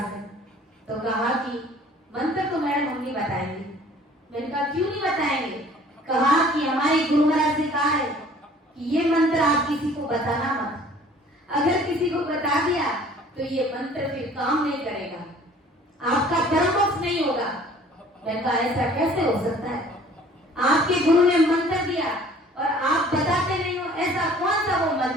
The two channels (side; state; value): both; normal; correlation 0.52